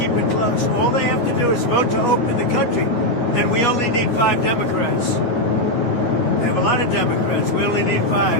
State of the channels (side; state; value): right; late; 9.3 ms